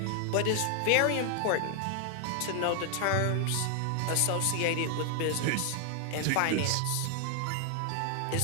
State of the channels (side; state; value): both; different; correlation 0.00